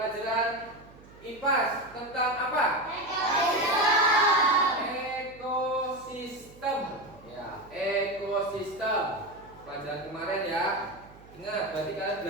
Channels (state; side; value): noise; right; hum, 22 dB below the sound